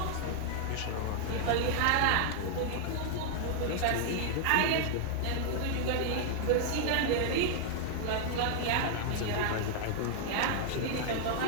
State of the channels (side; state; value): both; different; correlation -0.01